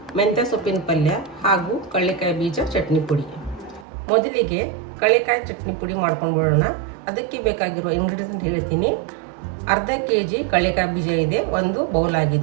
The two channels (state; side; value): drops out; left; at 3.9 s